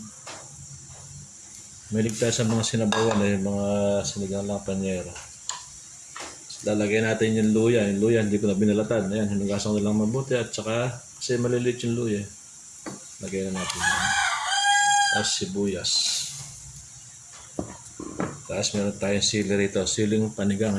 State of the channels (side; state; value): both; identical; correlation 1.00